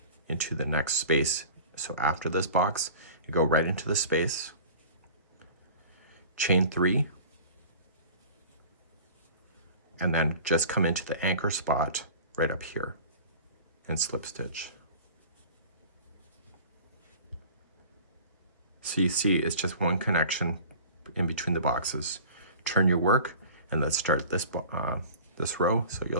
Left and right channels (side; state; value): both; inverted; correlation -0.41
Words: into the next space. So after this box, you go right into the space, chain 3, and then just come into the anchor spot right up here and slip stitch. So you see it's just one connection in between the boxes. Turn your work, and let's start this row. So